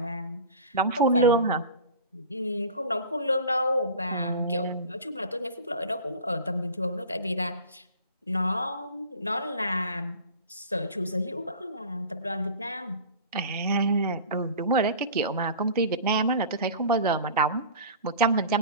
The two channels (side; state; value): both; inverted; correlation -0.37